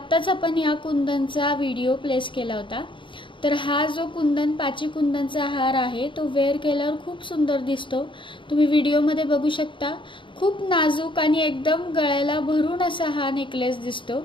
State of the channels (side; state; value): right; late; 0.24 ms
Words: आपण ह्या कुंदनचा व्हिडिओ प्लेस केला होता। तर हा जो कुंदन पाची कुंदनचा हार आहे तो वेअर केल्यावर खूप सुंदर दिसतो। तुम्ही व्हिडिओमध्ये बघू शकता। खूप नाजूक आणि एकदम गळ्याला भरून असा हा नेकलेस दिसतो।